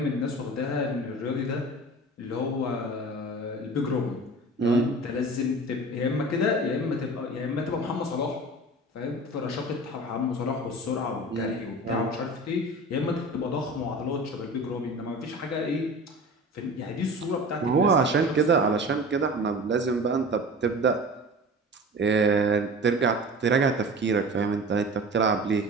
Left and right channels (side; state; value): both; normal; correlation 0.37